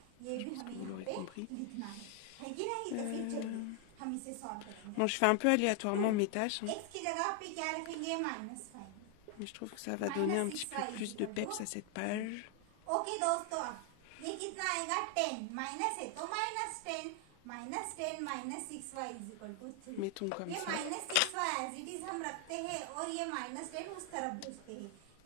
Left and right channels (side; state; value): both; different; correlation 0.00